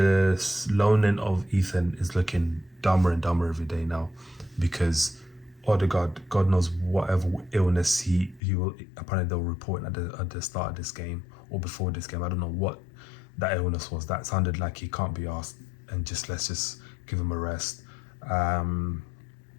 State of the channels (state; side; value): drops out; right; at 8.4 s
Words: loaning of Ethan is looking dumber and dumber every day now, because Odegaard, God knows whatever illness he will, apparently they'll report at the start of this game or before this game. I don't know what that illness was. That sounded like he can't be asked, and let's just give him a rest.